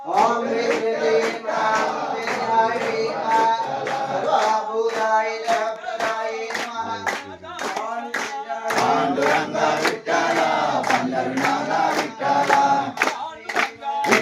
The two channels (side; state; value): both; identical; correlation 1.00